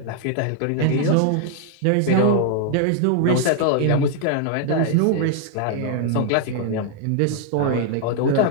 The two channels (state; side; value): different; both; correlation 0.00